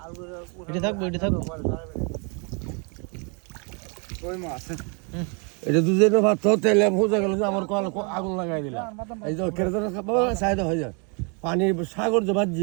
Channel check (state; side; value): quieter; left; 35.3 dB